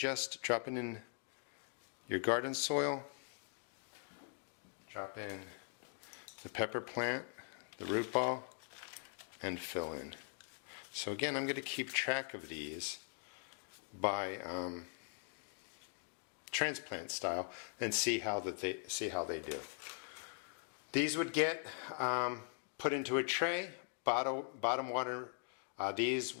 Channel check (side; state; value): right; silent; 50 dB below the other